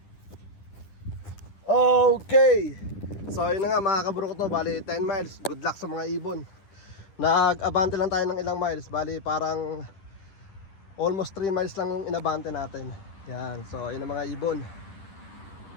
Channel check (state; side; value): late; right; 10 ms